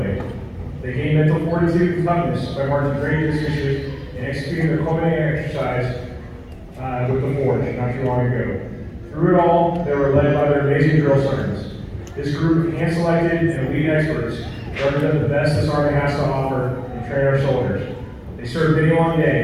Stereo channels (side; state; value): both; identical; correlation 1.00